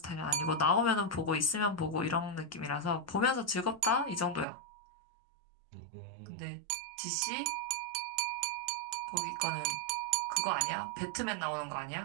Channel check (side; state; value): left; drops out; at 4.5 s